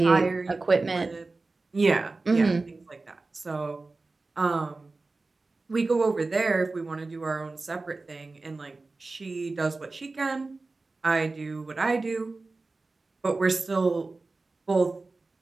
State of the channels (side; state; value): left; quieter; 3.5 dB